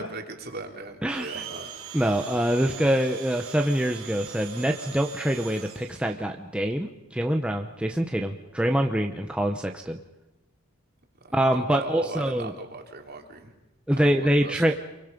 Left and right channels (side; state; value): both; normal; correlation 0.84